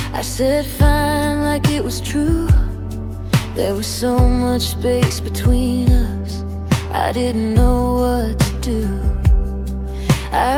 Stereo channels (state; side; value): identical; both; correlation 1.00